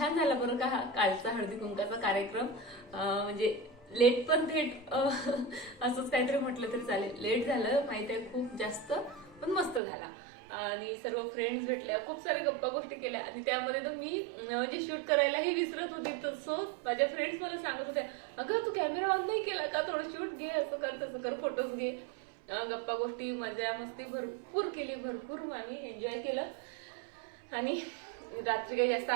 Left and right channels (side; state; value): left; drops out; at 9.8 s